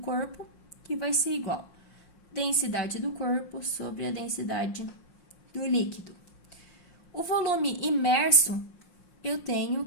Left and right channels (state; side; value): late; right; 5.6 ms